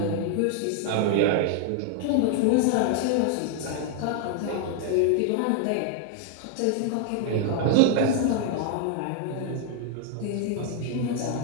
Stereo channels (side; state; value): both; different; correlation 0.00